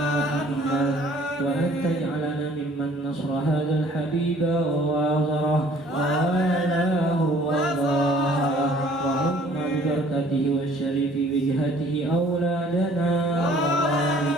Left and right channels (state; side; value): normal; both; correlation 0.56